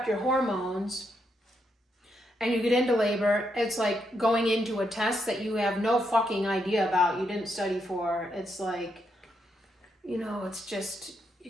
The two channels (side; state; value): both; normal; correlation 0.80